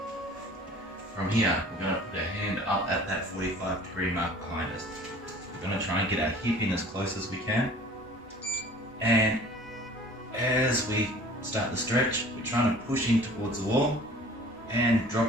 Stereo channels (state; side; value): normal; both; correlation 0.47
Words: From here, we're going to put our hand up at that 45-degree mark behind us. We're going to try and get our hip in as close as we can. And as we start the stretch, we're trying to push in towards the wall and